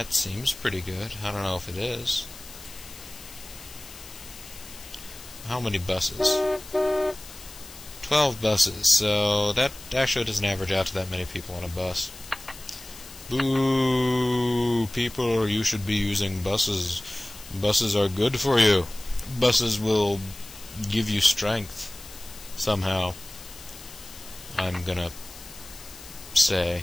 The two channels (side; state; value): left; noise; hiss, 17 dB below the sound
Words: seems pretty good. I don't know if it is. How many buses? 12 buses, so that actually doesn't average out to that many people on a bus. Boo! People, you should be using buses. Buses are good for you. Buses will give you strength somehow. I'm gonna say.